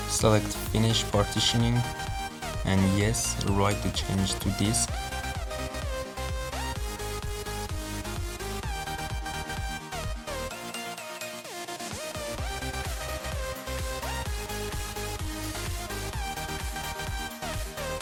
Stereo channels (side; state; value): both; identical; correlation 1.00